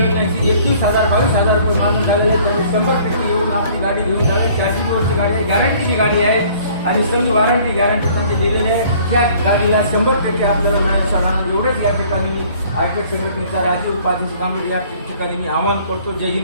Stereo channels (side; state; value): both; inverted; correlation -0.55